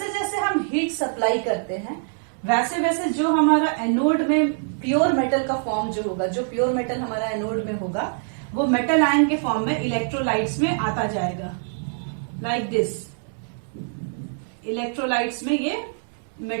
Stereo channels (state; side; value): silent; left; 63 dB below the other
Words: जैसे हम heat supply करते हैं वैसे वैसे जो हमारा anode में प्योर मेटल का फॉर्म जो होगा, जो प्योर मेटल हमारा एनोड में होगा वो मेटल आयन के फॉर्म में इलेक्ट्रोलाइट्स में आता जाएगा. लाइक दिस, इलेक्ट्रोलाइट्स में ये